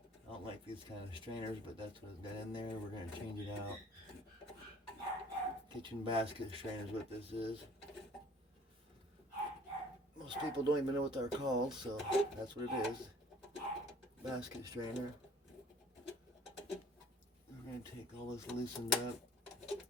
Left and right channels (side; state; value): both; normal; correlation 0.52